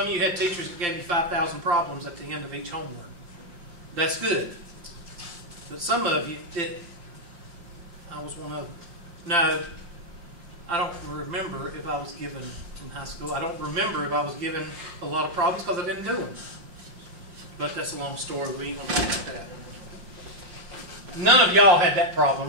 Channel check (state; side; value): late; left; 5.7 ms